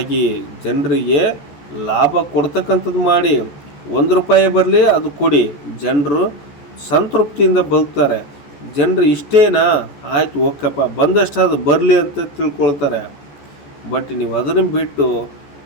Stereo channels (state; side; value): late; right; 14 ms